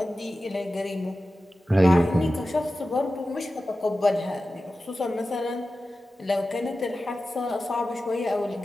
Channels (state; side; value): normal; both; correlation 0.94